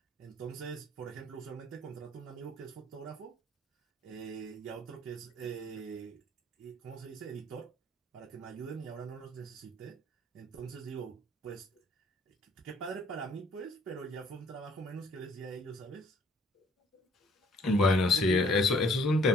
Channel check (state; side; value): normal; both; correlation 0.61